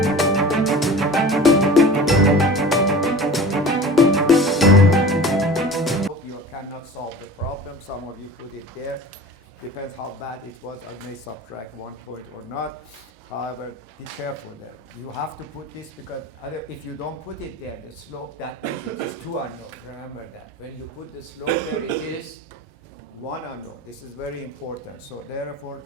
cannot solve the problem. Some of you put it there. Depends how bad it was. I may subtract 1 point or not. However, be careful there. You have to put this because if you don't put it there, the slope that is 2 unknown. Remember that. When you put the slope there, it is 1 unknown. This is very important. So therefore,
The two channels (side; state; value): both; normal; correlation 0.38